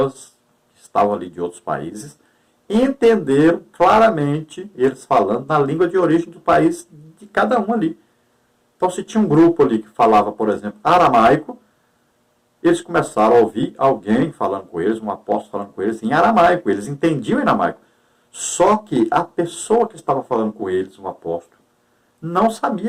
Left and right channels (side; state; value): both; identical; correlation 1.00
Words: que estavam ali de outros países entenderam claramente eles falando na língua de origem do país de cada um ali. Então, se tinha um grupo ali que falava, por exemplo, aramaico, eles começaram a ouvir alguém falando com eles, um apóstolo falando com eles em aramaico. Eles entendiam em aramaico. Só que a pessoa que estava falando com eles, um apóstolo, não